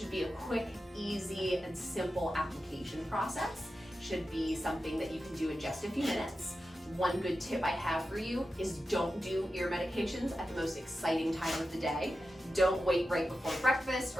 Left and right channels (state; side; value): normal; both; correlation 0.91